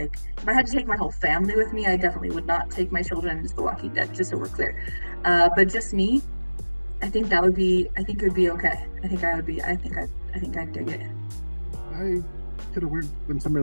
if I had to take my whole family with me, I definitely would not take my children into The Walking Dead, just so we're clear. But just me, I think it would be okay. I think I'd dig it. I could have been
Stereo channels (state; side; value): inverted; both; correlation -1.00